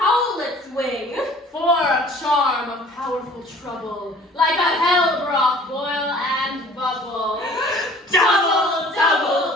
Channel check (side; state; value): both; normal; correlation 0.50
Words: wing, for a charm of powerful trouble, like a hell broth boil and bubble. Double,